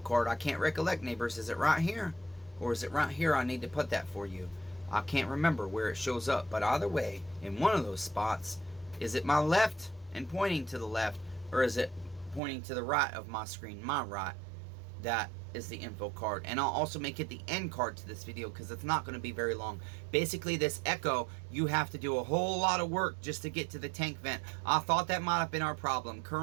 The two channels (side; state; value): left; drops out; at 12.4 s